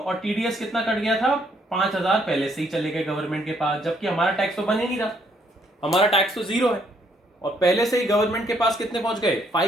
टीडीएस कितना कट गया था, 5,000 पहले से ही चले गए गवर्नमेंट के पास, जबकि हमारा टैक्स तो बन ही नहीं रहा, हमारा टैक्स तो 0 है, और पहले से ही गवर्नमेंट के पास कितने पहुंच गए,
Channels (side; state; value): both; normal; correlation 0.69